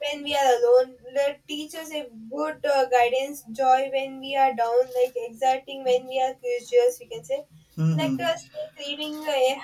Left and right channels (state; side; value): identical; both; correlation 1.00